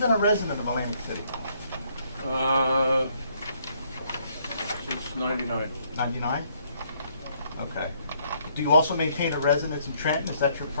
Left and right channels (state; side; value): inverted; both; correlation -0.68